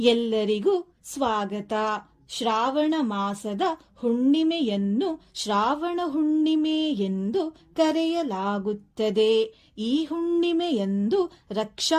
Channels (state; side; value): identical; both; correlation 1.00